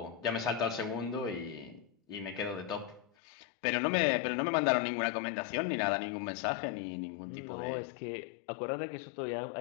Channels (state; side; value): drops out; right; at 3.1 s